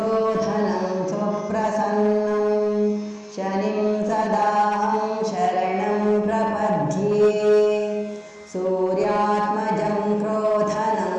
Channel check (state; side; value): identical; both; correlation 1.00